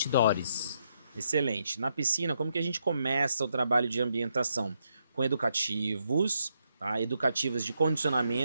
Excelente. Na piscina, como que a gente começa o trabalho de ambientação? Com educativos, tá? Educativos de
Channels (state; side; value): inverted; both; correlation -0.79